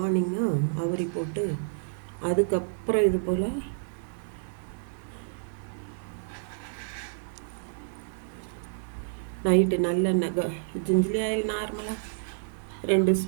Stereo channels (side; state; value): left; silent; 58 dB below the other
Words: அவரி போட்டு அதுக்கப்புறம் இது போல் நைட்டு நல்லெண்ணெய் ஜிஞ்சிலி ஆயில் நார்மலாக 2